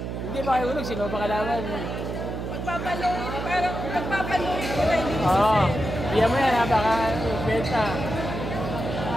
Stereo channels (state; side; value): noise; right; hum, 5 dB below the sound